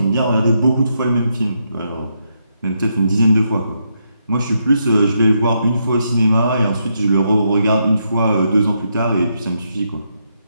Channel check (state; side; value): inverted; both; correlation -0.80